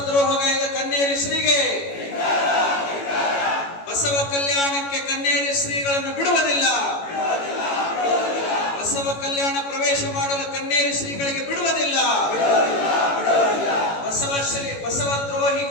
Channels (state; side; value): late; right; 18 ms